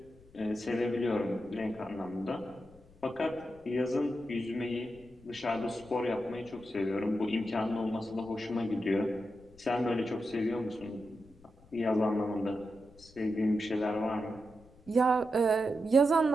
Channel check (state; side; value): noise; left; rumble, 25 dB below the sound